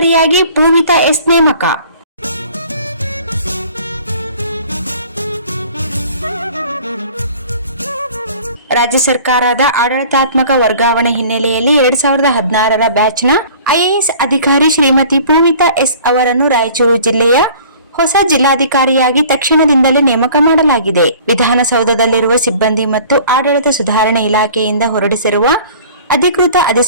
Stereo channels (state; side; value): inverted; both; correlation -0.48